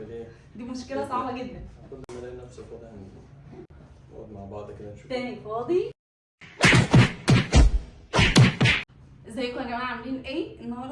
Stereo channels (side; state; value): both; identical; correlation 1.00